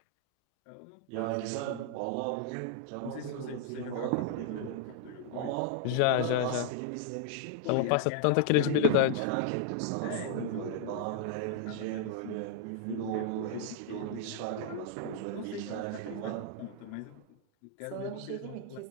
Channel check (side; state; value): both; different; correlation -0.01